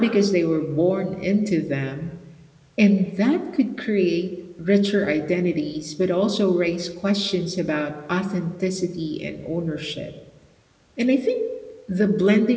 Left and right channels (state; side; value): identical; both; correlation 1.00